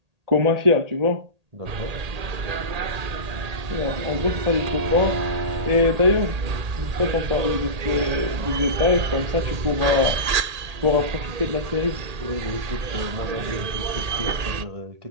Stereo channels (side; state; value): left; late; 1.8 ms